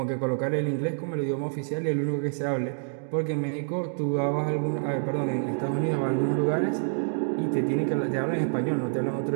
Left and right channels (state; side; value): silent; left; digital silence